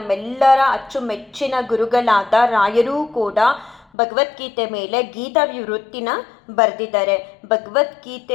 ಅಚ್ಚುಮೆಚ್ಚಿನ ಗುರುಗಳಾದ ರಾಯರೂ ಕೂಡ ಭಗವದ್ಗೀತೆ ಮೇಲೆ ಗೀತಾ ವಿವೃತ್ತಿನ ಬರೆದಿದ್ದಾರೆ.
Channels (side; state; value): right; drops out; at 3.9 s